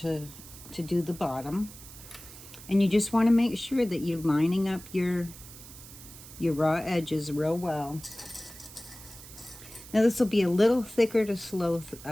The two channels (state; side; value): noise; right; hiss, 17 dB below the sound